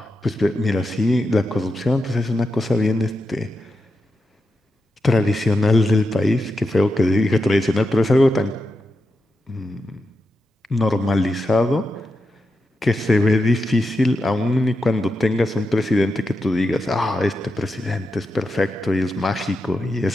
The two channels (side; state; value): both; normal; correlation 0.88